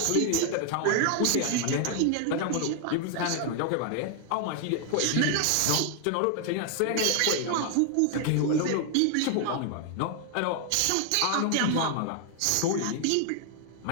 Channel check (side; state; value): both; different; correlation 0.00